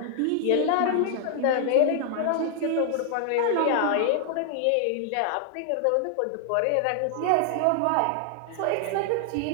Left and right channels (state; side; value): different; both; correlation 0.00